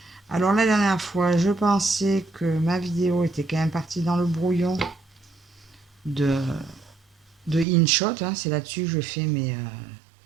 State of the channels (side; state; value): left; drops out; at 7.7 s